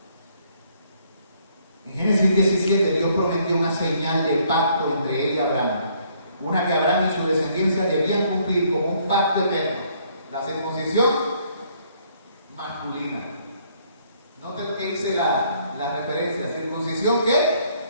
En Génesis 17, Dios prometió una señal de pacto entre Él y Abraham. Una que Abraham y su descendencia debían cumplir como un pacto eterno. La circuncisión masculina. Noten lo que hice la referencia. ¿Circuncisión qué?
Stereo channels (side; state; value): both; inverted; correlation -0.66